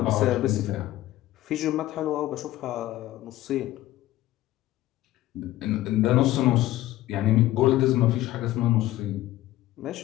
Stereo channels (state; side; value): quieter; right; 15.4 dB